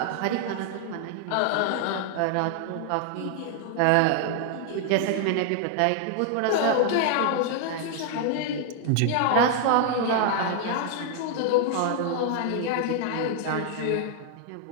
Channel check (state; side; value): different; both; correlation 0.00